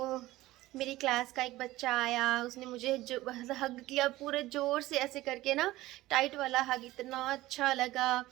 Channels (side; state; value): left; quieter; 17.2 dB